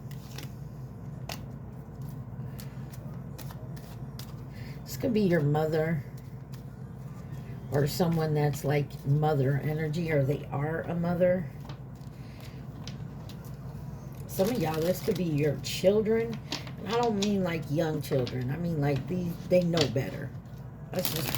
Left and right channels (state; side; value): identical; both; correlation 1.00